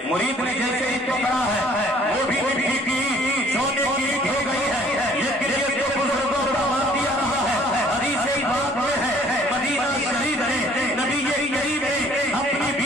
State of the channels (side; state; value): both; normal; correlation 0.57